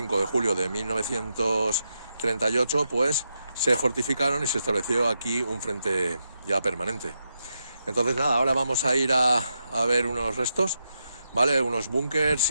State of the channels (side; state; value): both; inverted; correlation -0.84